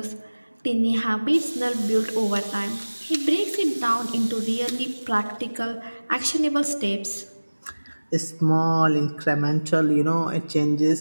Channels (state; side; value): inverted; both; correlation -1.00